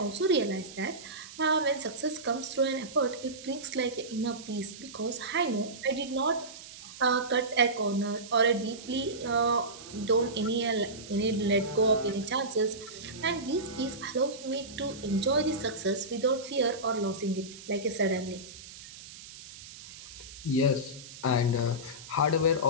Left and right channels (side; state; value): right; noise; hiss, 15 dB below the sound